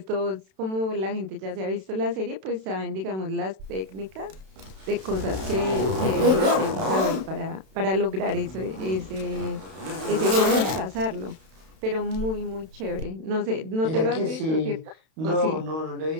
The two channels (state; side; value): late; left; 32 ms